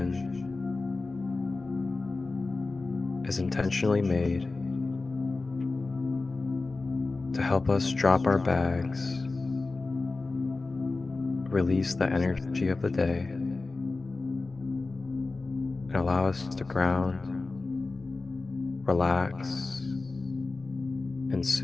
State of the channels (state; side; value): quieter; right; 3.6 dB